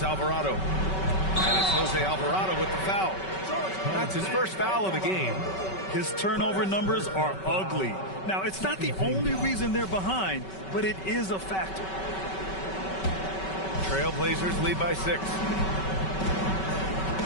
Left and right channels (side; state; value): right; late; 5.3 ms